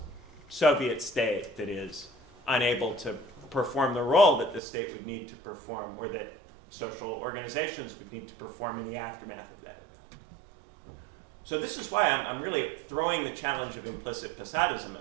Soviet state that is unable to perform the role that the state would need to perform, or that social organizations would need to perform in the aftermath of that event. So this is why I'm really throwing the challenge of implicit Posadism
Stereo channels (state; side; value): drops out; left; at 4.6 s